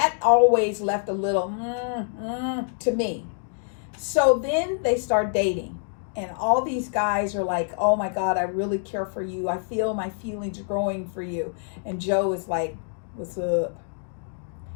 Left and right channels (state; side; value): silent; right; digital silence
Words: always left a little to me. So then they start dating. And all these guys are like, oh my God, I really care for you. I feel my feelings growing for you. And Joe is like, what's up?